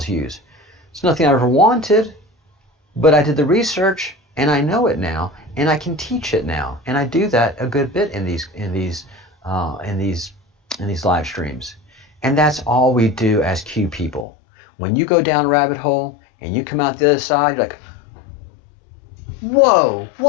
use. It's nothing I ever wanted, but I did the research and I know it now, and I can teach it now, and I do that a good bit in these live streams. And that's all we do as Q people. When you go down a rabbit hole and you come out the other side, you're like, whoa,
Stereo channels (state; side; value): drops out; right; at 14.2 s